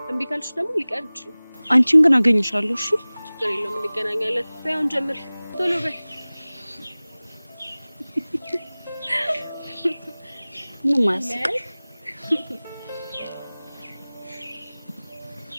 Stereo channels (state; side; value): inverted; both; correlation -0.99